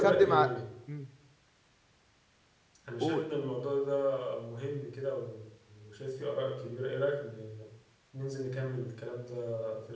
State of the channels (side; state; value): both; identical; correlation 1.00